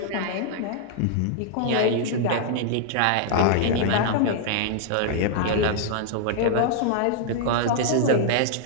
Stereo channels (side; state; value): both; different; correlation 0.00